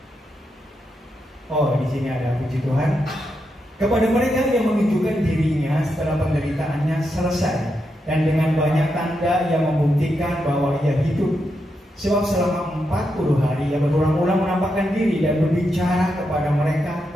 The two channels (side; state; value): both; normal; correlation 0.84